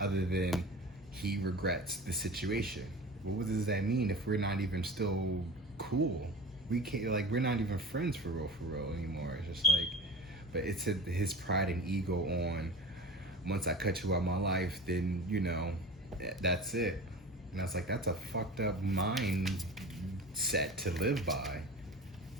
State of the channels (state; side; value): normal; both; correlation 0.35